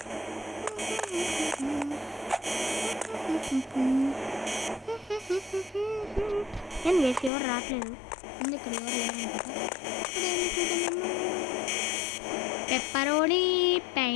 నేను వేసి ఎవరు రావట్లేదు, ఎందుకు పెప్పరోనీ,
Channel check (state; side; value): drops out; right; at 7.3 s